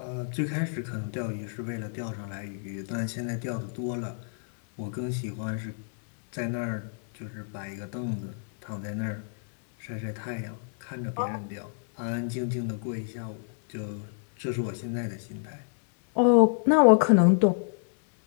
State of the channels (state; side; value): silent; right; digital silence